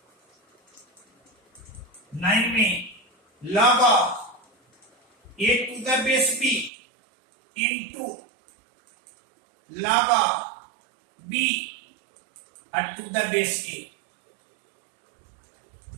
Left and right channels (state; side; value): drops out; left; at 6.7 s